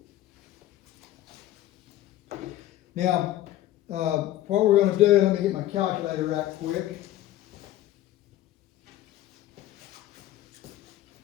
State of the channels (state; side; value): quieter; right; 14.0 dB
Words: Now, what we're going to do, let me get my calculator right quick.